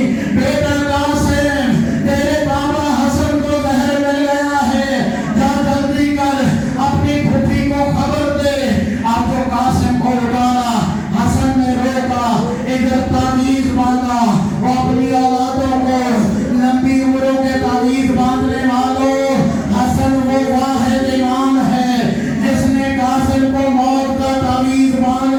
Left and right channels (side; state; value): both; identical; correlation 1.00